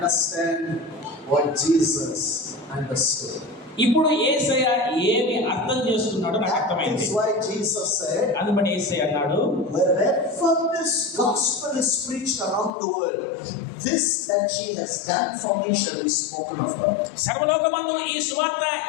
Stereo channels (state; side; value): drops out; right; at 12.7 s